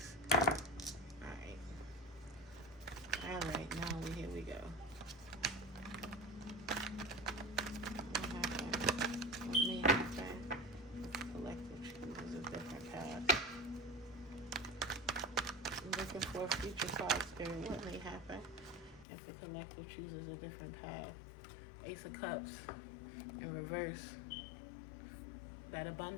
Alright. Alright, now here we go. What may happen? The collective chooses a different path. Looking for a future card, Spirit. What may happen if the collective chooses a different path? Ace of Cups in reverse. That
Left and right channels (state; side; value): drops out; right; at 19.1 s